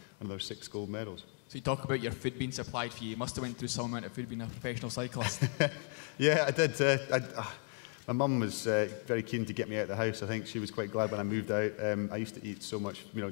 another 6 gold medals. So you talk about your food being supplied for you. You must have went through some amount of food being a professional cyclist. Yeah, I did. My mum was very keen to get me out of the house. I think she was quite glad when I moved out. I used to eat so much,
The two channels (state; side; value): quieter; right; 37.7 dB